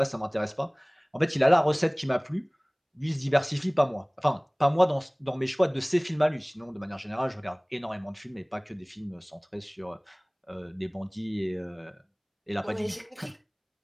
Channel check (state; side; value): identical; both; correlation 1.00